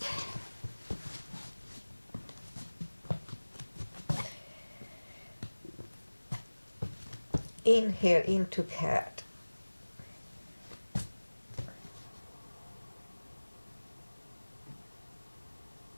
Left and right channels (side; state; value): both; inverted; correlation -1.00